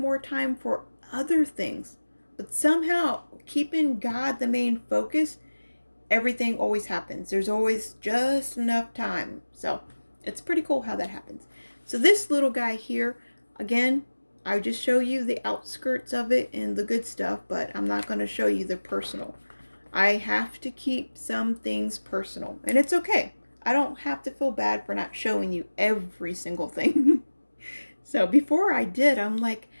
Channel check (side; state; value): both; inverted; correlation -1.00